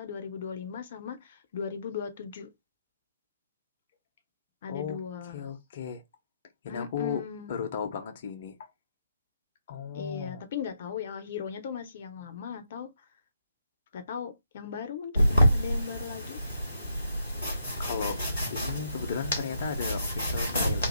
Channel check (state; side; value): inverted; both; correlation -0.76